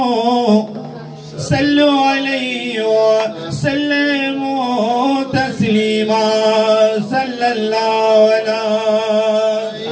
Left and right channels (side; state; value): both; identical; correlation 1.00